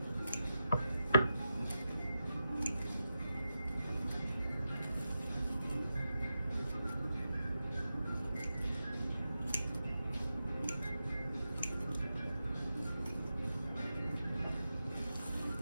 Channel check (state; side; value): inverted; both; correlation -0.90